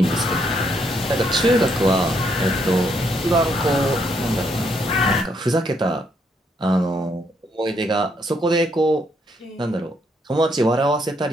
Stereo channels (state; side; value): normal; both; correlation 0.73